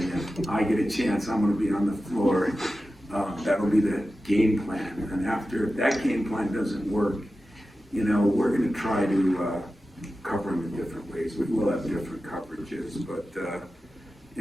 if I get a chance, I'm going to be on the floor. That'll be the game plan. And if that game plan doesn't work, we're going to try to cover him in different ways. We will have different coverages, but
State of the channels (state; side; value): normal; both; correlation 0.93